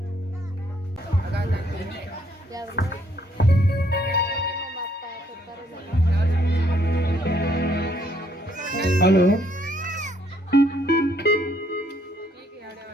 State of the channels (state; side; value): normal; both; correlation 0.68